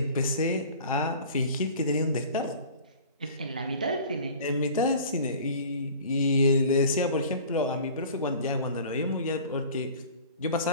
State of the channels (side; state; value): both; inverted; correlation -0.44